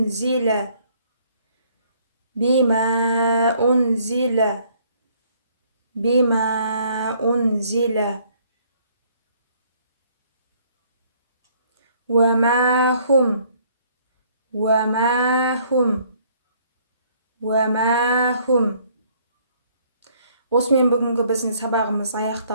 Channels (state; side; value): inverted; both; correlation -0.63